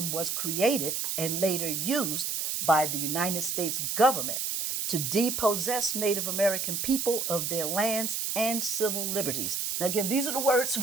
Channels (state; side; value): noise; right; hiss, 1 dB below the sound